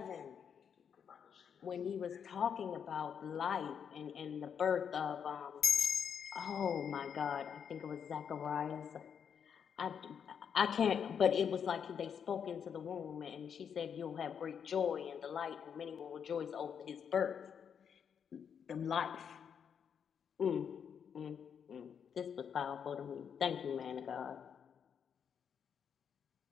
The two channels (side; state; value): right; quieter; 7.5 dB